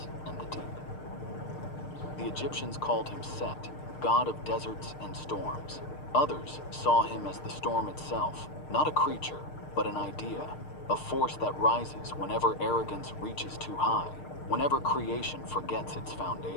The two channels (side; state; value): right; late; 6.6 ms